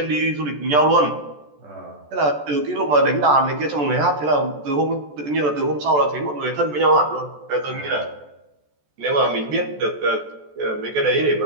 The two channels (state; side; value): late; left; 14 ms